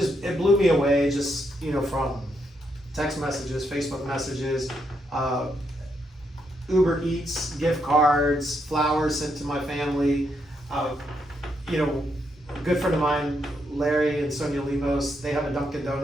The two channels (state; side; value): normal; both; correlation 0.78